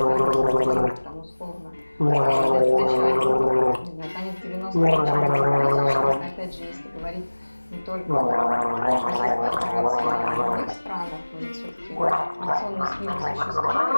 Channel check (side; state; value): both; inverted; correlation -1.00